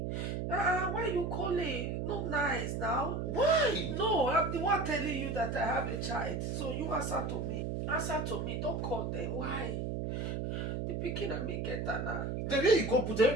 Why you calling? Not nice now. Why? No, I'm the one telling you that I have a child. So you answer to me. Answer to me. Don't call them. Why? The pikin and me get her now. The way you go put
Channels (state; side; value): noise; right; hum, 2 dB below the sound